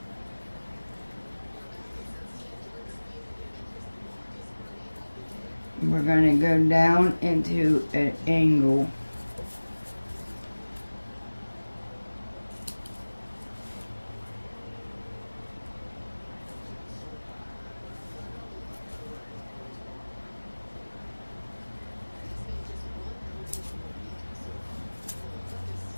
We're going to go down into an angle.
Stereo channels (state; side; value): inverted; both; correlation -1.00